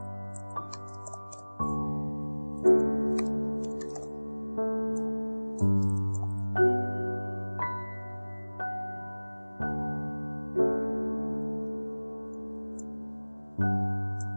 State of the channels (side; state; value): both; inverted; correlation -1.00